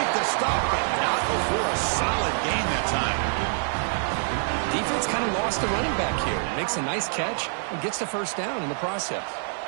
the stop, but not before a solid gain that time. Defense kind of lost the running back here. Makes a nice catch and gets the first down in the process.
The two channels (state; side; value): silent; left; digital silence